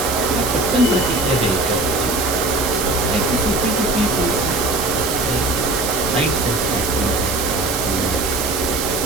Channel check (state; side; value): noise; right; hiss, 4 dB below the sound